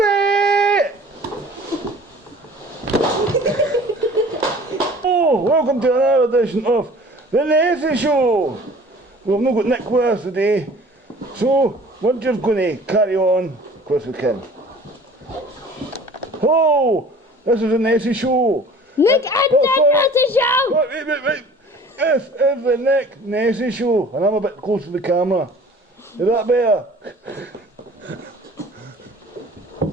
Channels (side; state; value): both; normal; correlation 0.47